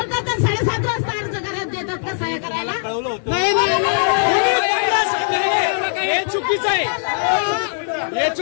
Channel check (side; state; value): right; silent; 58 dB below the other